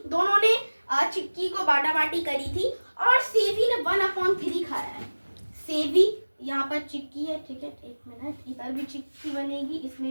दोनों ने चिक्की को बाटा बाटी करी थी, और सेवी ने 1/3 खाया है। सेवी, यहाँ पर चिक्की है, ठीक है, एक मिनट, इधर भी चिक्की बनेगी,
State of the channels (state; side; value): inverted; both; correlation -1.00